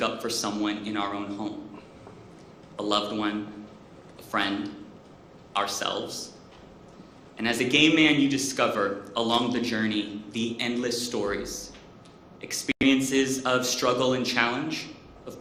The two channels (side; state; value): both; identical; correlation 1.00